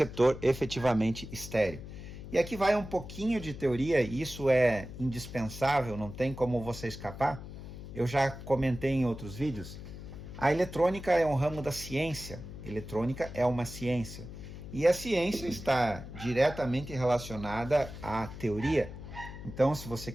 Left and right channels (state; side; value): noise; left; hum, 12 dB below the sound